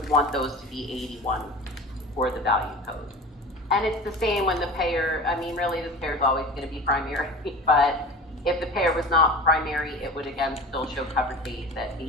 want those to be 81 for the value code. And it's the same when the payer, really this payer is always going to be primary, but if the payer was not primary, it would again still show covered days at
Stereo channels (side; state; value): both; normal; correlation 0.35